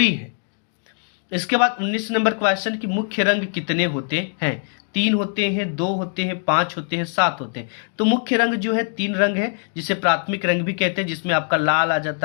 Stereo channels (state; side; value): silent; right; 56 dB below the other